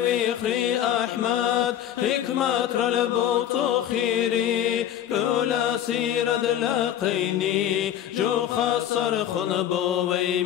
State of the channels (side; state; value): right; quieter; 10.7 dB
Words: بخري أحمد حكمة رلبوت خيري كل سيرد لاقيني جو خسر خنبو